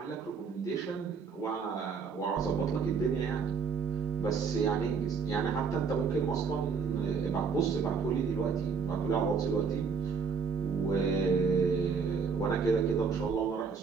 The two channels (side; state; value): left; quieter; 5.7 dB